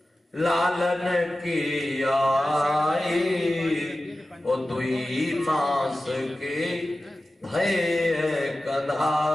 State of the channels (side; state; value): both; normal; correlation 0.95